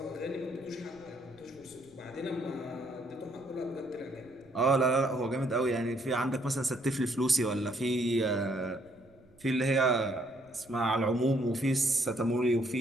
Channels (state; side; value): noise; right; rumble, 28 dB below the sound